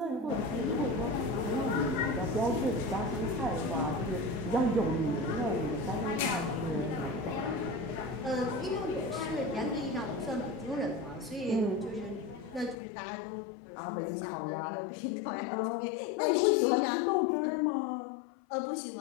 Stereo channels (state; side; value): drops out; right; at 12.8 s